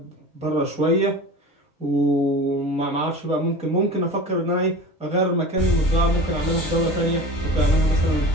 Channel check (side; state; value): both; normal; correlation 0.35